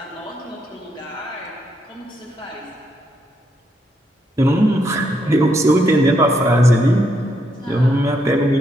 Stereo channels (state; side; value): normal; both; correlation 0.77